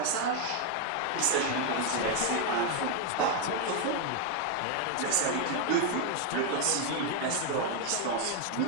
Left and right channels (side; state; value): both; different; correlation 0.01